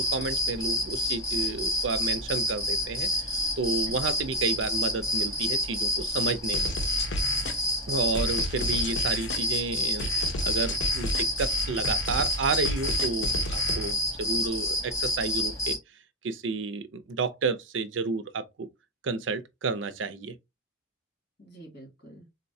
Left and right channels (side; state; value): both; normal; correlation 0.09